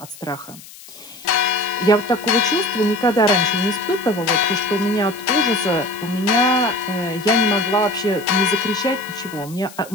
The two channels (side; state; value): left; noise; hiss, 19 dB below the sound